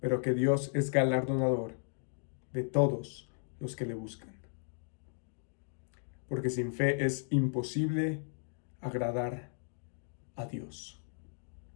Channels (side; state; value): right; silent; digital silence